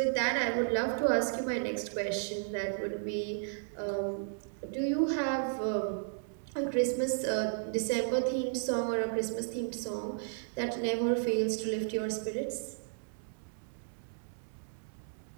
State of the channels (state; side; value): silent; left; digital silence